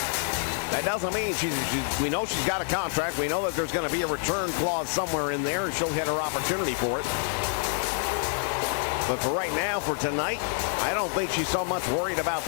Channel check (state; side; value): silent; right; 60 dB below the other